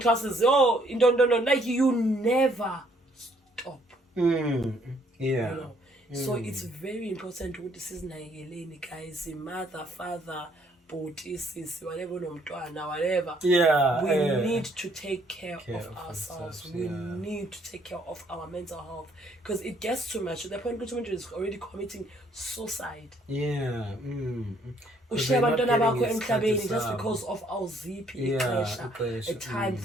classes. No. Like you never stop. So it's very important to this is guys, mother, father, whatever, whatever. We need to take care of ourselves. We need to take care of our mental health, because it gets too much to the point where is already committing suicide. Just because of our ZP a time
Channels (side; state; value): both; normal; correlation 0.66